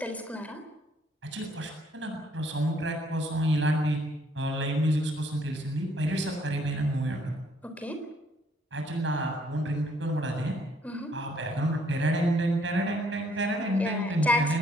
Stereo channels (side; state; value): both; normal; correlation 0.66